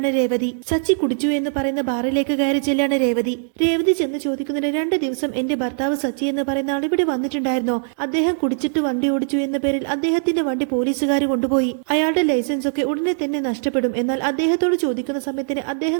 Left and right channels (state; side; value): silent; left; digital silence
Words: രേവതി. സച്ചി കുടിച്ചു എന്ന് പറയുന്ന ബാറിലേക്ക് കയറി ചെല്ലാണ് രേവതി. രേവതി ചെന്ന് ചോദിക്കുന്നതിന് 2 ദിവസം എന്റെ ഭർത്താവ് സച്ചി എന്ന് പറയുന്ന ആൾ ഇവിടെ വന്നിട്ടുണ്ടായിരുന്നോ? അദ്ദേഹം കുടിച്ചിട്ട് വണ്ടി ഓടിച്ചു എന്ന പേരിൽ അദ്ദേഹത്തിന്റെ വണ്ടി പോലീസുകാർ കൊണ്ടുപോയി. അയാളുടെ ലൈസൻസ് ഒക്കെ ഉടനെ തന്നെ നഷ്ടപ്പെടും. എന്നാൽ അദ്ദേഹത്തോട് ചോദിക്കുന്ന സമയത്തിന്